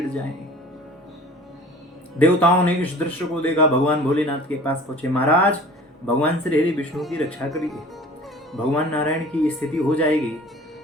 जाएं। देवताओं ने इस दृश्य को देखा, भगवान भोलेनाथ के पास पहुंचे। महाराज, भगवान श्री हरि विष्णु की रक्षा करिए। भगवान नारायण की स्थिति हो जाएगी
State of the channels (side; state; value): both; normal; correlation 0.45